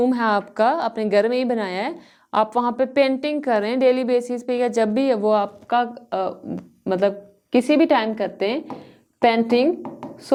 है आपका, अपने घर में ही बनाया है, आप वहाँ पे पेंटिंग कर रहे हैं डेली बेसिस पे या जब भी वो आपका मतलब किसी भी टाइम करते हैं पेंटिंग,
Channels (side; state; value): both; identical; correlation 1.00